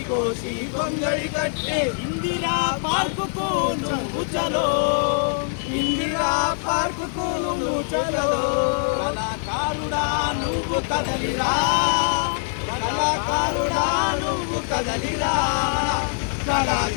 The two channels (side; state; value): right; silent; digital silence